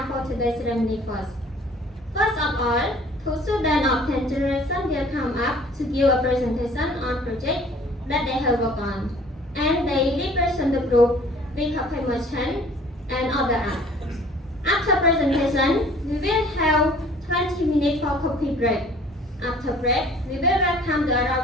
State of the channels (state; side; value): normal; both; correlation 0.52